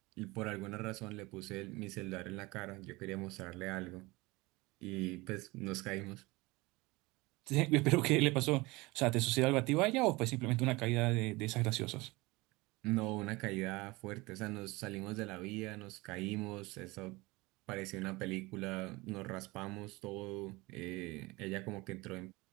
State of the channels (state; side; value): quieter; left; 22.8 dB